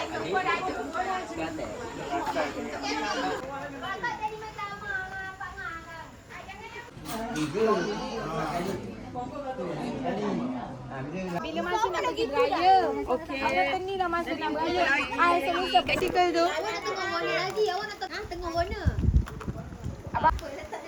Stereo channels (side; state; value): both; identical; correlation 1.00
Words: Kelantan. Bapak tadi macam apa ngarang? Bila masa nak pergi beraya? Okey. Ada ni dah masa nak beraya. Saya lupa practical tu. Awak nak tengok warna lagi. Awak nak tengok warna. Abang.